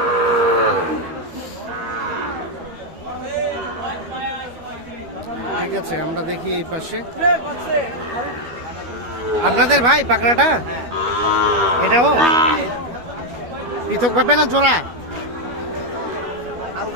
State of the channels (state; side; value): late; left; 12 ms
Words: ঠিক আছে, আমরা দেখি এই পাশে আপনাদের ভাই পাকড়াটা, এটাও পৃথক ভাবে না জোড়া?